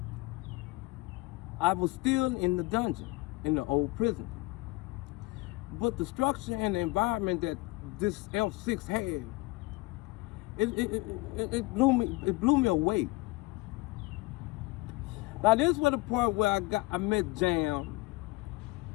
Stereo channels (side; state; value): right; quieter; 22.8 dB